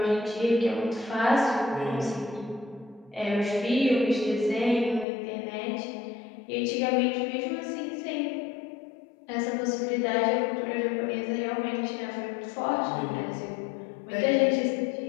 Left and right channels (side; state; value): right; drops out; at 5.1 s